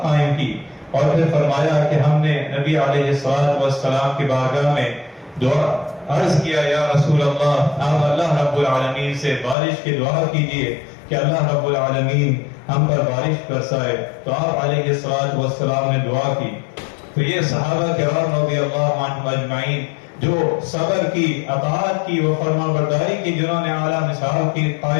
قائم کی، اور پھر فرمایا کہ ہم نے نبی علیہ الصلوۃ والسلام کی بارگاہ میں دعا عرض کیا، یا رسول اللہ آپ اللہ رب العالمین سے بارش کی دعا کیجئے کہ اللہ رب العالمین ہم پر بارش برسائے۔ تو آپ علیہ الصلوۃ والسلام نے دعا کی۔ تو یہ صحابہ کرام رضی اللہ عنہم اجمعین جو صبر کی، اطاعت کی و فرما برداری کی، جنہوں نے اعلیٰ مثال کی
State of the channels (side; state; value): right; drops out; at 9.6 s